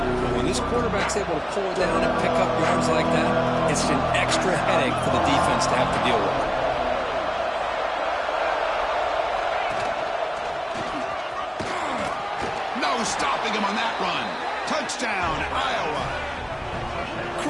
when this quarterback's able to pull it down and pick up yards like that, it's an extra headache for the defense to have to deal with. Stopping him on that run. Touchdown, Iowa.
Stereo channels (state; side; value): identical; both; correlation 1.00